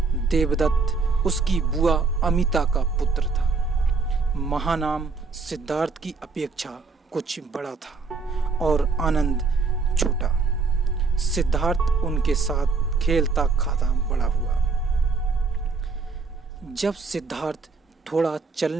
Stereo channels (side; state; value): left; quieter; 4.4 dB